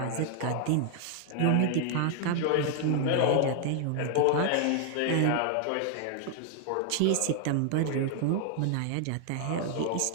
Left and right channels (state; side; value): different; both; correlation 0.00